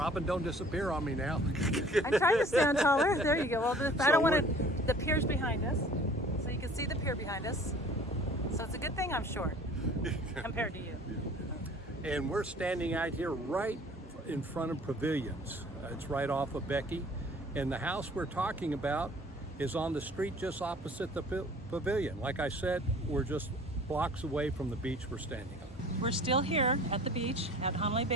don't disappear on me now. I'm trying to stand taller. There you go. Well, I don't want to. The pier's behind us, so you can see the pier behind us. So it's a good thing I'm short compared to you. And we're standing out here right in front of Pavilions. It's right off of Becky. And the house we're talking about is on the street just opposite the Pavilion. Like I said, we're just blocks away from the beach we're standing on. We're still here at the beach at Hanalei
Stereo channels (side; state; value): both; normal; correlation 0.50